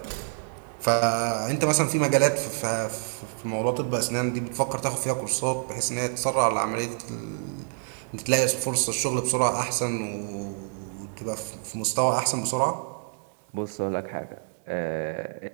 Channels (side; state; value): left; silent; digital silence